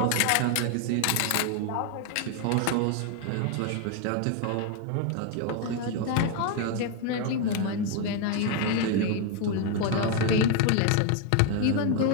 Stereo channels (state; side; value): different; both; correlation 0.01